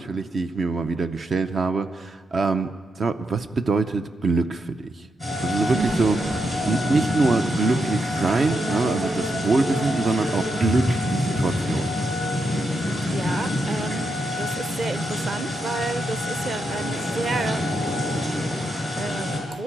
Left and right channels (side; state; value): both; normal; correlation 0.83